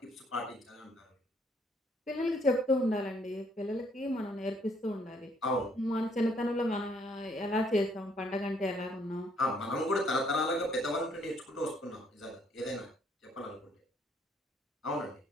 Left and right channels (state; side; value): normal; both; correlation 0.67